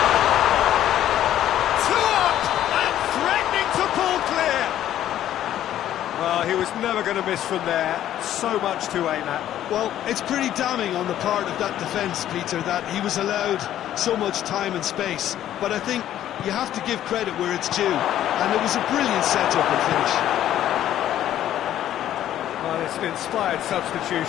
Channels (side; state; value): right; quieter; 11.9 dB